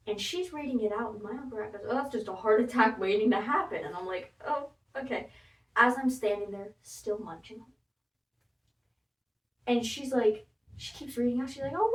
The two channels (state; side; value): identical; both; correlation 1.00